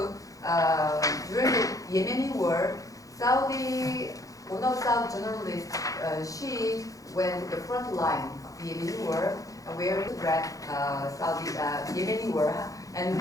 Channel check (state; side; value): late; right; 0.17 ms